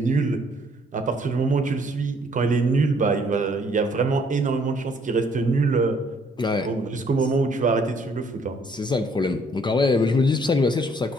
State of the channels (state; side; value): normal; both; correlation 0.64